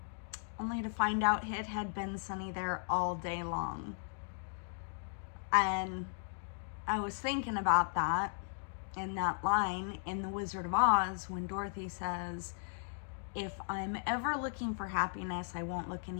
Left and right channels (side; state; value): right; silent; digital silence